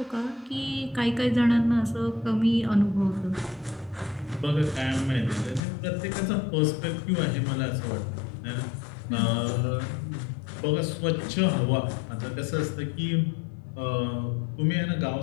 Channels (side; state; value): right; drops out; at 5.6 s